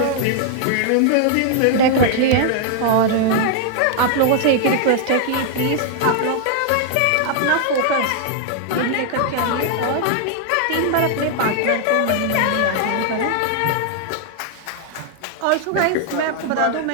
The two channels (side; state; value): both; different; correlation 0.00